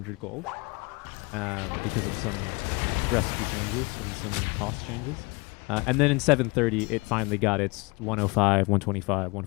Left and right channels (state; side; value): quieter; right; 27.1 dB